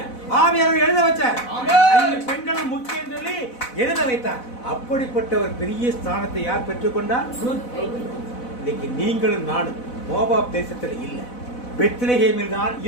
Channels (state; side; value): late; right; 4.0 ms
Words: ஆவியானவர் எழுத வச்சார். பெண்களும் முக்கியம் சொல்லி எழுத வைத்தார். அப்படிப்பட்ட ஒரு பெரிய ஸ்தானத்தை யார் பெற்றுக்கொண்டார்? இன்னைக்கு நீங்களும் நானும் மோவாப் தேசத்தில் இல்லை, பெத்லகேமில் தான்